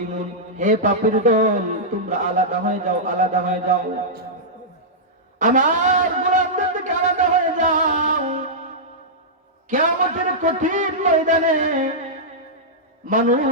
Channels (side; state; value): both; normal; correlation -0.12